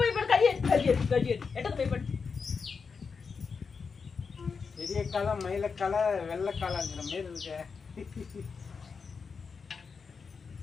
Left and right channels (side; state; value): right; quieter; 5.4 dB